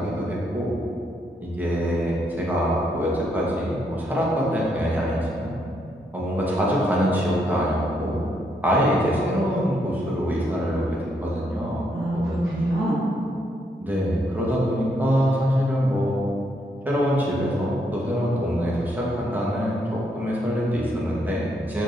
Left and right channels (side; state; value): both; normal; correlation 0.75